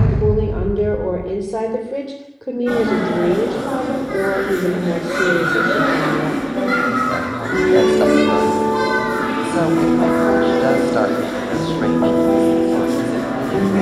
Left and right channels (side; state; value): both; identical; correlation 1.00